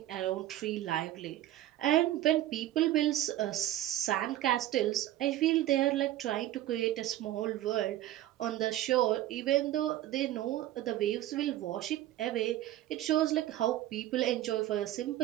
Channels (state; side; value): quieter; left; 13.9 dB